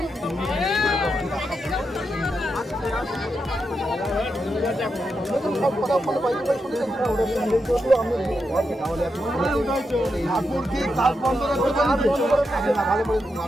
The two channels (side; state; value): both; normal; correlation 0.85